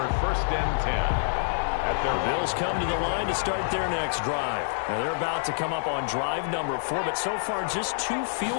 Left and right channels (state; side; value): silent; right; digital silence